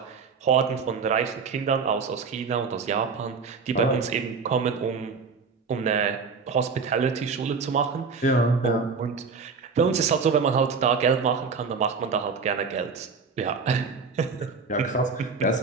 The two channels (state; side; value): quieter; left; 5.0 dB